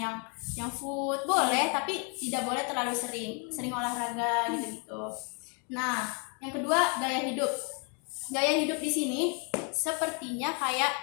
food boleh, tapi tidak boleh terlalu sering olahraga gitu. Nah, yang kedua, gaya hidup di sini sepertinya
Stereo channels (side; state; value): right; quieter; 36.8 dB